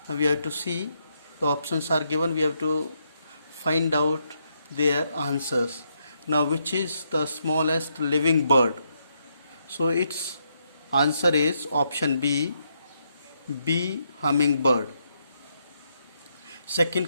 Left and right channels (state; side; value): inverted; both; correlation -0.78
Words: Now we have to see the options are given. We have to find out their answers. Now which is the smallest living bird? So its answer is option B, bee hummingbird. Second